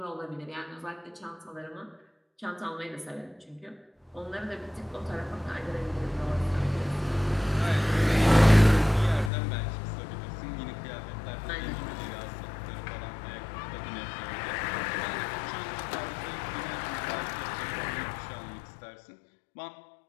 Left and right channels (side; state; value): right; drops out; at 9.3 s